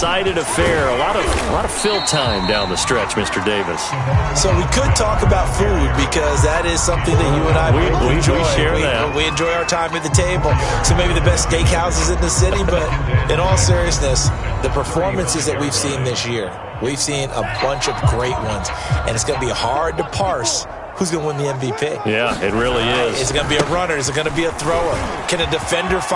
affair. A lot of fill time down the stretch, Mr. Davis. So we could talk about food because that is something that you and I enjoy. We share that. We enjoy our time at the table. So maybe the best steakhouses in the city, but in all seriousness, the performances that we've seen this year, we've seen a bunch of great ones, and it's going to be hard to parse who's going to win the MVP. Yeah, it really is. Is it going to be a runner? Is it going to be a thrower? Can a defender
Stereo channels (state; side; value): identical; both; correlation 1.00